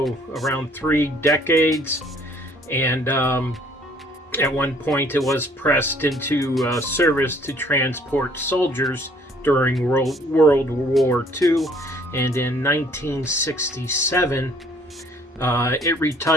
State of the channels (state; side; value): normal; both; correlation 0.60